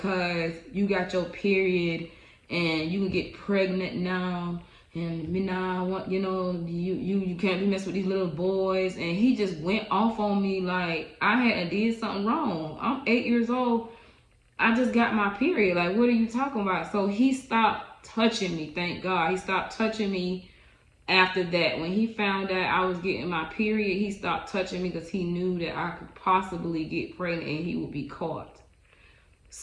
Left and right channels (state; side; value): identical; both; correlation 1.00